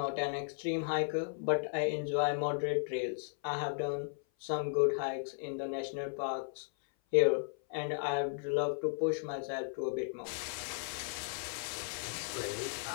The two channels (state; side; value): silent; right; 54 dB below the other